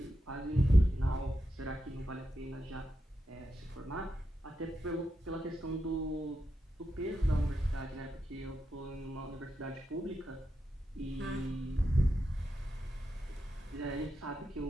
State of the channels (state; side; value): normal; both; correlation 0.87